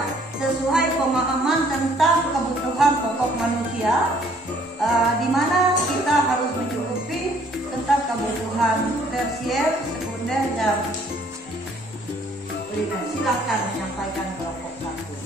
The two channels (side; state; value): both; normal; correlation 0.61